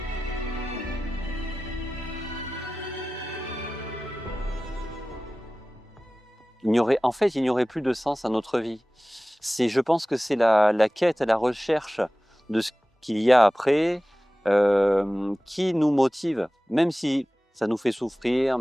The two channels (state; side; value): normal; both; correlation 0.97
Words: Il n'y aurait plus de sens à notre vie. Je pense que c'est la quête, la recherche de ce qu'il y a après qui nous motive, même si ça nous fait souffrir,